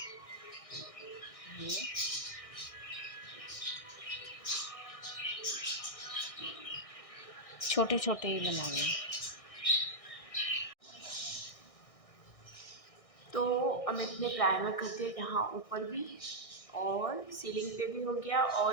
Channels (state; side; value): late; right; 1.6 ms